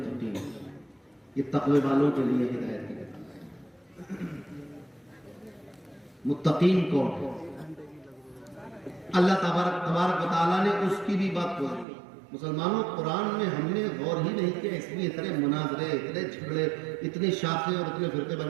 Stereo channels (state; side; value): drops out; left; at 11.9 s